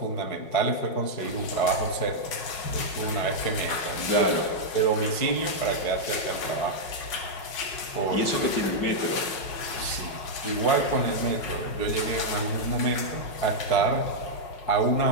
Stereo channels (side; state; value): right; late; 5.5 ms